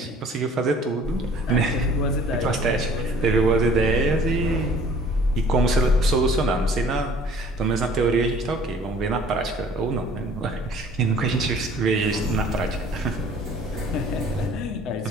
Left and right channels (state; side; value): normal; both; correlation 0.53